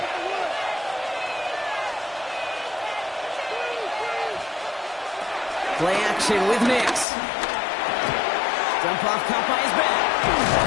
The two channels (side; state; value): right; drops out; at 7.1 s